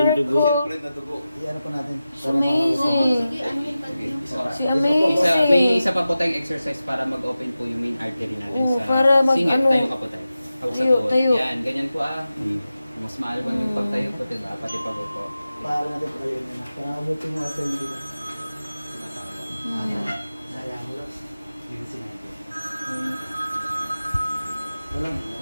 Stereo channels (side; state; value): both; inverted; correlation -0.93